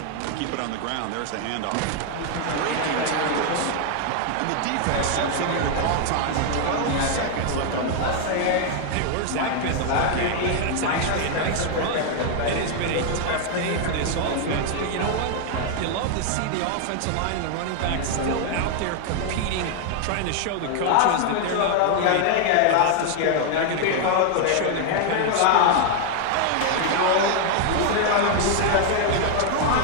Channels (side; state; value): both; different; correlation 0.00